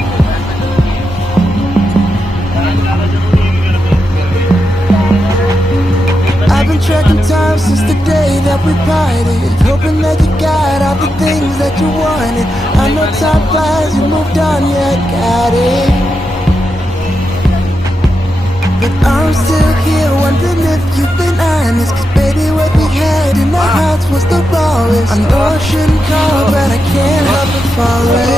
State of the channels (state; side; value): normal; both; correlation 0.87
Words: tracking time since the day that we parted, hoping that you got all the things that you wanted. I know time flies, you moved on, yeah, I got it. But I'm still here wondering if you've been honest, 'cause baby what we had in our hearts was the rawest. I know I shouldn't call, but I can't help but